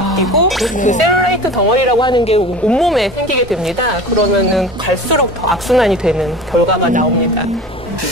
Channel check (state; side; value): normal; both; correlation 0.37